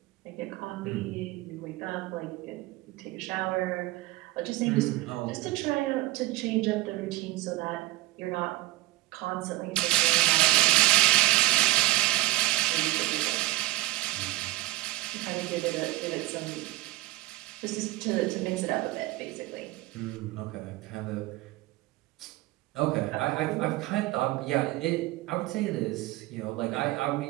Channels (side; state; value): left; quieter; 18.3 dB